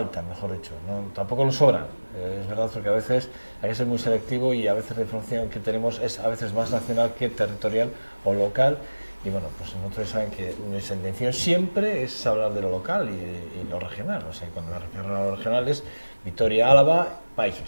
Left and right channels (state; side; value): inverted; both; correlation -1.00